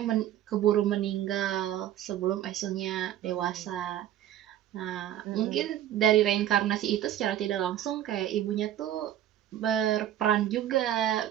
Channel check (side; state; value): left; quieter; 11.8 dB